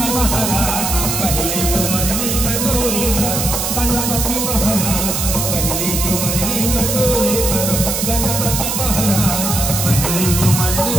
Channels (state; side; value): noise; right; hiss, 1 dB below the sound